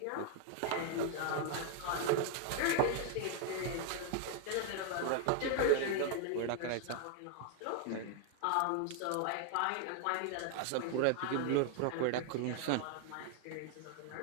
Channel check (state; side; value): different; both; correlation 0.00